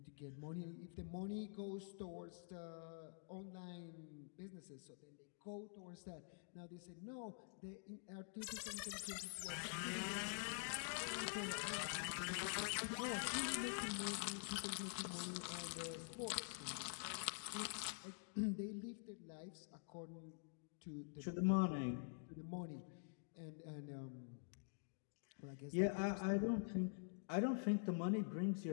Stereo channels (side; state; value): right; silent; digital silence